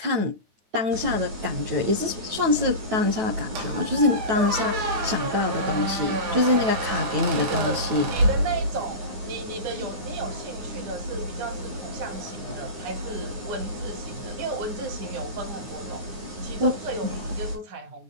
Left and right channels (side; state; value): left; late; 9.2 ms